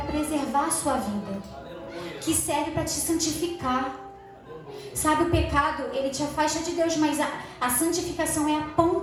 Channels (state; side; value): identical; both; correlation 1.00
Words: preservar a sua vida. Que serve para te santificar. Sabe, o pecado, ele te afasta de Deus, mas a santificação é a